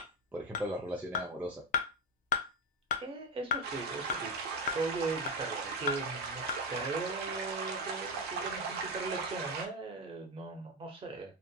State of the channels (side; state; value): both; normal; correlation 0.10